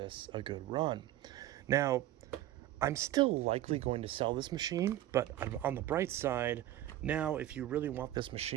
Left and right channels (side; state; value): left; quieter; 13.8 dB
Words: a good run. Now, I'm still likely going to sell this machine, but on the bright side, now if you really want this